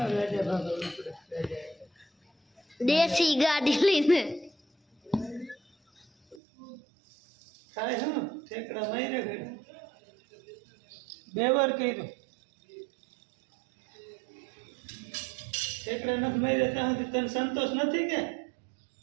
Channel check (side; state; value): left; drops out; at 6.4 s